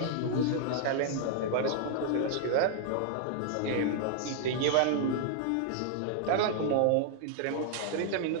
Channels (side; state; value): both; different; correlation -0.01